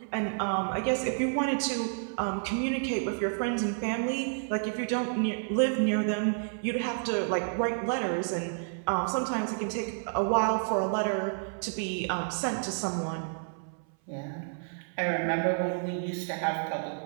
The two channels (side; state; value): left; silent; 58 dB below the other